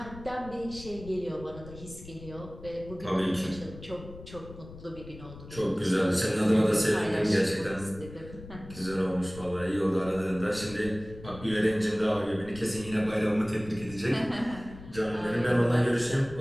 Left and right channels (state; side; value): noise; left; rumble, 16 dB below the sound